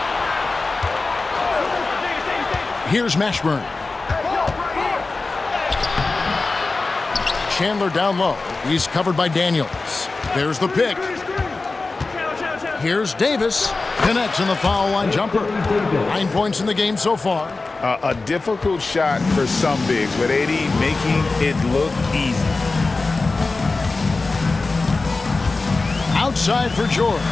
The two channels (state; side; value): quieter; right; 3.6 dB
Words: Here's Mashburn. Chandler down low. He's covered by Daniels. There's the pick. Here's Davis. Connects in the foul line jumper. 9 points in the game so far. A difficult shot for some bigs, but AD making it look easy. Outside for George.